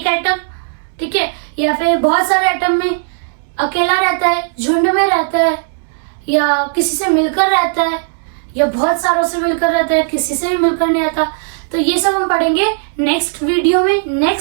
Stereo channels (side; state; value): left; silent; digital silence